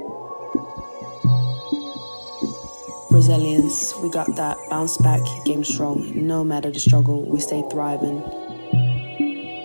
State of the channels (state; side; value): inverted; both; correlation -1.00